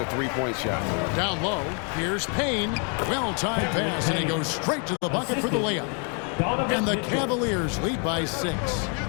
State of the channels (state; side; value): quieter; right; 38.7 dB